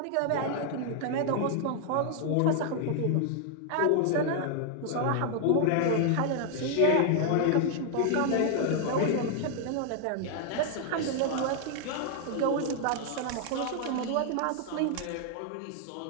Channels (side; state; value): both; different; correlation 0.00